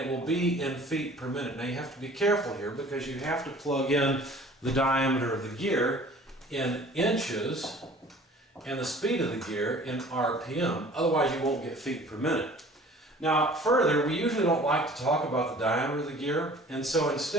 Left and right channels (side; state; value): both; normal; correlation 0.49